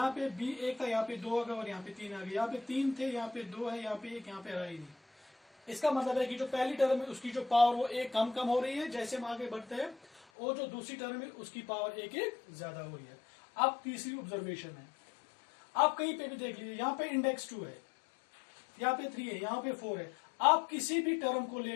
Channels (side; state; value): right; drops out; at 10.2 s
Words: पे b 1 था, यहाँ पे 2 आ गया, और यहाँ पे 3 आ गया, यहाँ पे 3 थे, यहाँ पे 2 है, यहाँ पे 1, यहाँ पे रहा ही नहीं। इसका मतलब है कि जो पहली टर्म है उसकी जो पावर वो 1 कम कम हो रही है जैसे हम आगे बढ़ते हैं, और जो दूसरी टर्म है उसकी पावर 1 1 ज्यादा हो रही है। अब तीसरी ऑब्जर्वेशन है, आप कहीं पे भी देख लीजिए, यहाँ पे इंडेक्स 2 है, यहाँ पे 3 है, यहाँ पे 4 है। आप किसी भी टर्म को